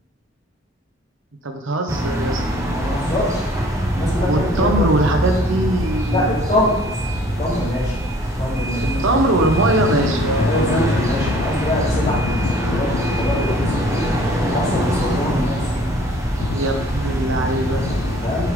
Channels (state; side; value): normal; both; correlation 0.54